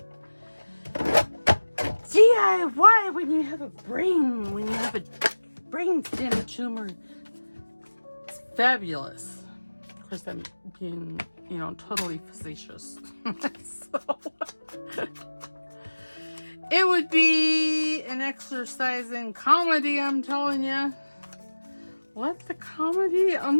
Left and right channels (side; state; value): both; inverted; correlation -1.00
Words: DIY when you have a brainstem tumor. It's fabulous. Of course, I'm being, you know, totally facetious. So, it would be an exercise in comedy, I'm telling you. Let the comedy